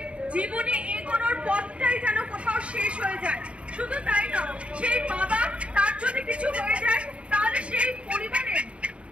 জীবনে এগোনোর পথটাই যেন কোথাও শেষ হয়ে যায়। শুধু তাই না, সেই বাবা তার যদি কিছু হয়ে যায় তাহলে সেই পরিবারের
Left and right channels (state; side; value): late; left; 0.061 ms